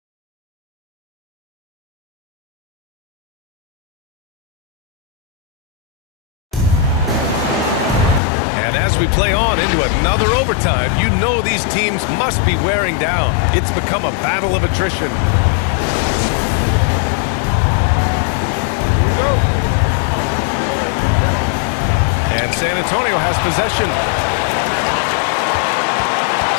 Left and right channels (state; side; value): drops out; right; at 8.2 s